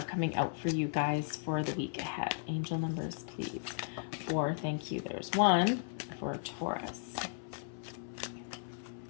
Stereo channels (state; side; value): silent; right; 54 dB below the other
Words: coming out for you guys for the week ahead. Angel numbers, please. Thank you. There's 1 for Taurus.